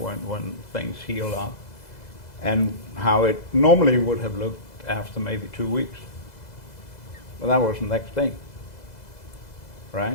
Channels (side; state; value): right; late; 2.0 ms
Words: things heal up, and how it normally would have looked after maybe 2 weeks. But that was the next day,